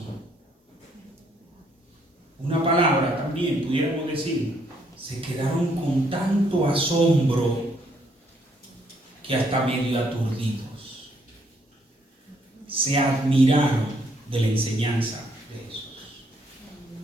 Una palabra también pudiéramos decir: se quedaron con tanto asombro que hasta medio aturdidos. Se admiraron de la enseñanza de Jesús.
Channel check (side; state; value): both; normal; correlation 0.70